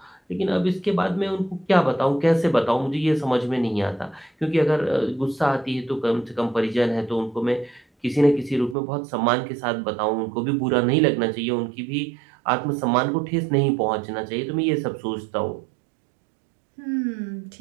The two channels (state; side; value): drops out; left; at 8.8 s